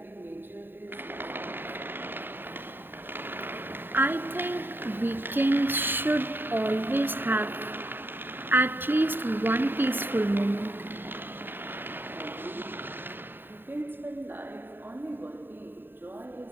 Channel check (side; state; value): left; late; 0.096 ms